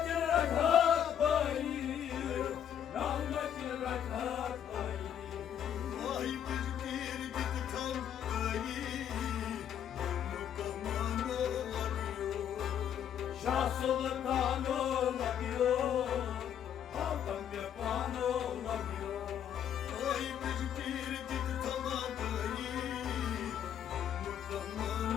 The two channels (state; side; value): quieter; right; 9.4 dB